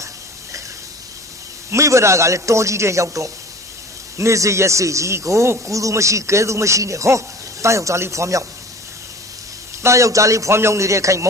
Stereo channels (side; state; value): both; normal; correlation 0.41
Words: းမိဘရာကလည်းတော်ကြီးတဲ့ရောက်တော့နေစေရစေကြီးကိုကူသူမရှိကဲသူမရှိနဲ့ဟောတားယောက်ျားလေးဖွားမြောက်တားယောက်ျားလေးဖွားမြောက်နေတဲ့ခိုင်မေ